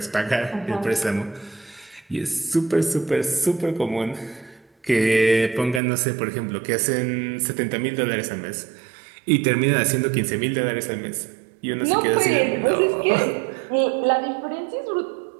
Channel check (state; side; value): drops out; left; at 5.8 s